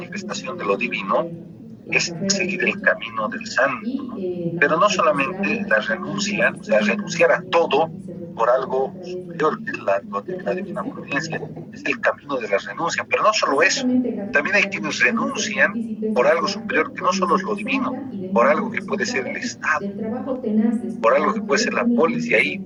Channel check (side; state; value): both; identical; correlation 1.00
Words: de lo divino es seguir el camino del santo, ¿no? Pero no solamente la renuncia, o sea, renunciar a todo por algo superior, que es la divina providencia, es el camino de la renuncia, pero no solo eso, también hay quienes renuncian por algo superior que no solo es lo divino, por algo que puede ser el Estado, ¿no? Por algo que puede ser la polis, y ahí